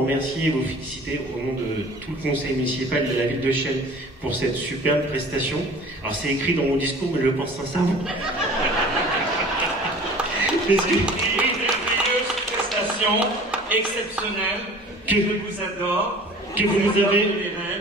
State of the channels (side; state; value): both; normal; correlation 0.45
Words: et vous féliciter au nom de tout le conseil municipal de la ville de Chelles pour cette superbe prestation. Alors c'est écrit dans mon discours, mais je le pense sincèrement. Une merveilleuse prestation exceptionnelle que je vous adore, que vous nous avez,